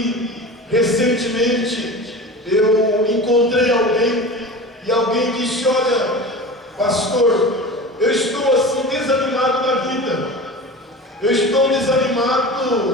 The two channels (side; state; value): both; normal; correlation 0.33